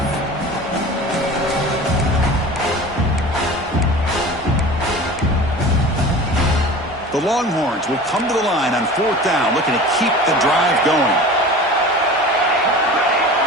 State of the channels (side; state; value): both; normal; correlation 0.37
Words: The Longhorns will come to the line on 4th down, looking to keep the drive going.